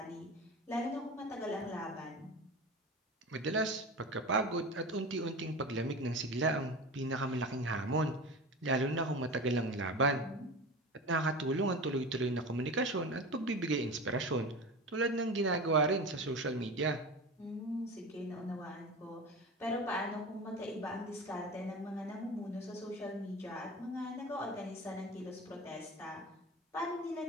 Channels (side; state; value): both; normal; correlation 0.30